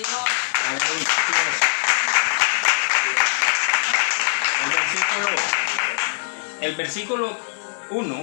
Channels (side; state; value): right; silent; digital silence